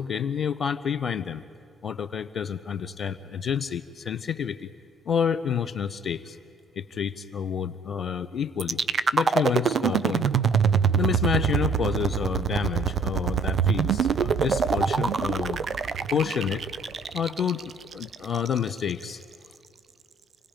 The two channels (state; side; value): normal; both; correlation 0.58